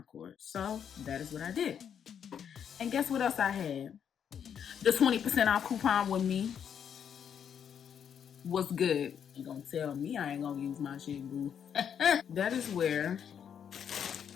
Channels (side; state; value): right; quieter; 8.2 dB